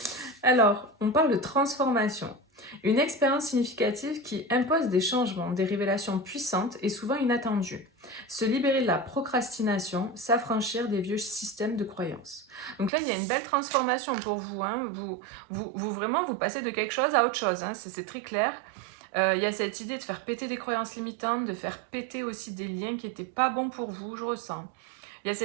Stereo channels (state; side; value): drops out; left; at 12.9 s